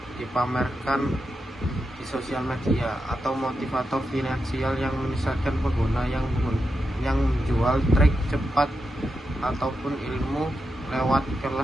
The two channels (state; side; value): normal; both; correlation 0.87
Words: dipamerkan di sosial media, atau motivator finansial yang menyesatkan pengguna yang menjual trik cepat ataupun ilmu lewat